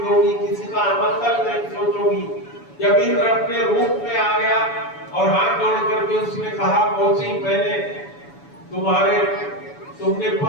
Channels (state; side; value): late; right; 7.0 ms